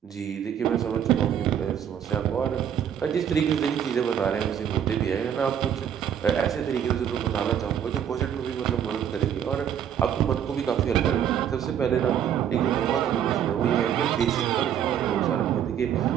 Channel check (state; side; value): quieter; left; 9.2 dB